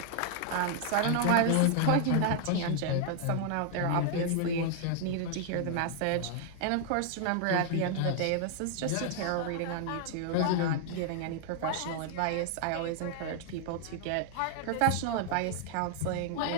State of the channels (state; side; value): different; both; correlation 0.00